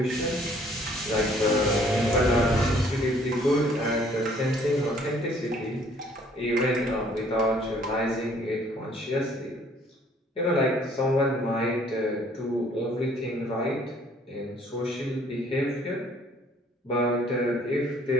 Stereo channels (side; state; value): both; normal; correlation 0.60